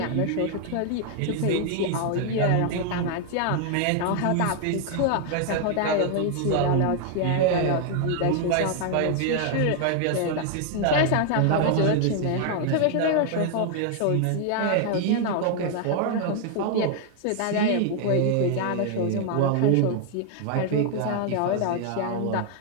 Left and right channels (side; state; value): both; different; correlation 0.00